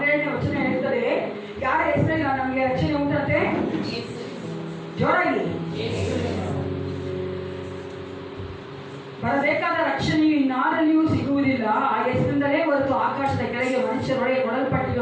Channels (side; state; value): both; identical; correlation 1.00